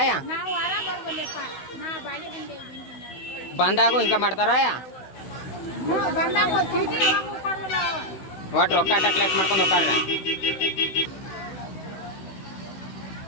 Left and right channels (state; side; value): late; right; 16 ms